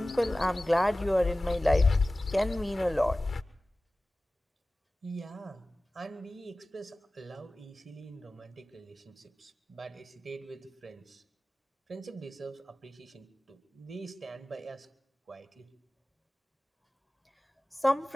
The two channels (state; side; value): normal; both; correlation 0.97